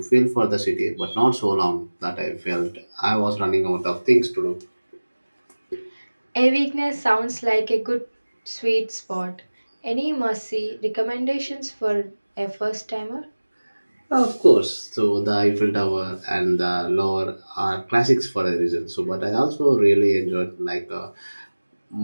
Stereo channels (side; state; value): both; inverted; correlation -1.00